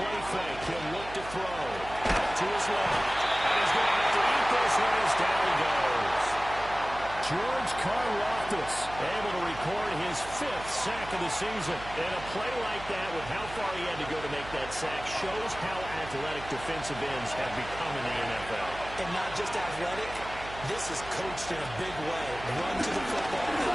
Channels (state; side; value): noise; right; hum, 14 dB below the sound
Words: fake, he'll look to throw. Out to his left. And he's going to have to eat this one as down he goes. George Karlaftis able to record his 5th sack of the season. And a play like that with how far he had to go to make that sack shows how athletic defensive ends have become in the NFL. And not just athletic, this is coached in a big way. Run to the football